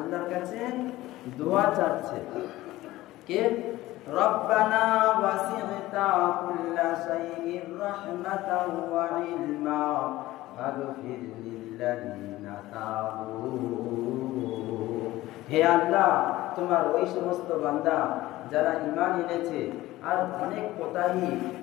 কাছে দোয়া চাচ্ছে কে? রব্বানা ওয়াসি'তা কুল্লা শাইইন রাহমাতাও ওয়া ইলমা ফাগফির লিল্লাযিনা তাবু। হে আল্লাহ তোমার ওই সমস্ত বান্দা যারা ঈমান এনেছে আর অনেক কোতাহি,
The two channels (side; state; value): right; quieter; 16.9 dB